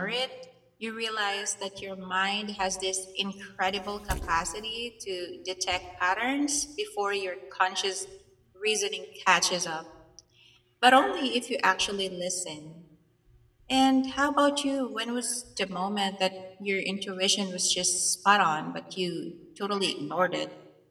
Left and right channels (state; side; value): identical; both; correlation 1.00